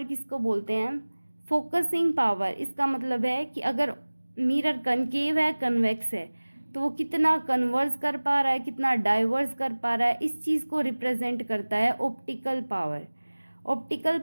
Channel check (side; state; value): both; inverted; correlation -1.00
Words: किसको बोलते हैं, फोकसिंग पावर। इसका मतलब है कि अगर मिरर कनकेव है, कन्वेक्स है, तो वो कितना कन्वर्स कर पा रहा है, कितना डाइवर्स कर पा रहा है, इस चीज़ को रिप्रेजेंट करता है optical power. Optical